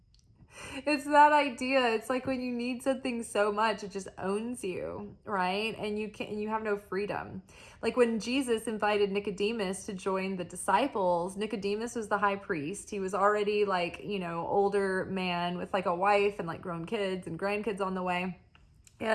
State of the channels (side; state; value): both; identical; correlation 1.00